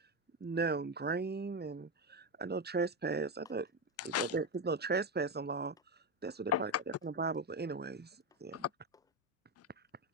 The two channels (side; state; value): both; normal; correlation 0.12